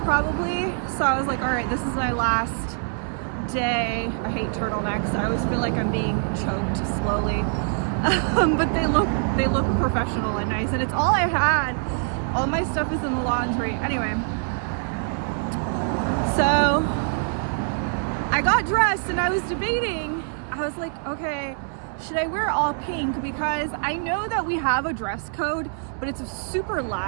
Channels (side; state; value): left; silent; 58 dB below the other